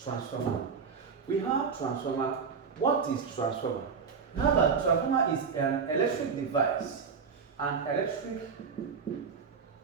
We have transformer. What is transformer? Remember, transformer is an electric device. An electric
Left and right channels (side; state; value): left; quieter; 5.8 dB